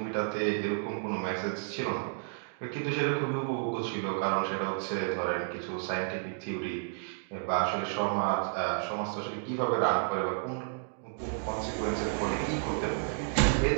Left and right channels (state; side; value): silent; left; digital silence